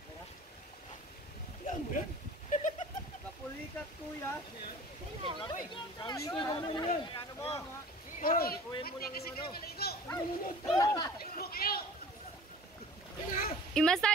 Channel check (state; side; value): normal; both; correlation 0.43